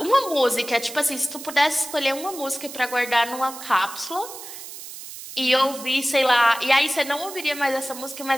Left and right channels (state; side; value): noise; right; hiss, 12 dB below the sound